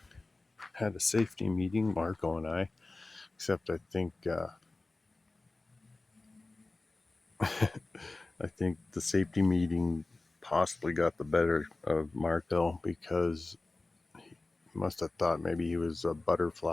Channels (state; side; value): quieter; right; 3.2 dB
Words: had a safety meeting, Marco and I. Except I think I think the safety meeting possibly got the better of Marco because he must have thought maybe he was a